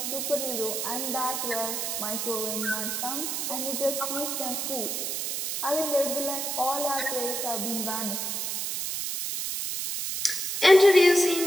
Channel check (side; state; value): right; noise; hiss, 2 dB below the sound